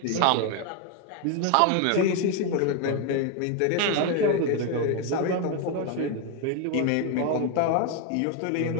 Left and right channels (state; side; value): different; both; correlation 0.01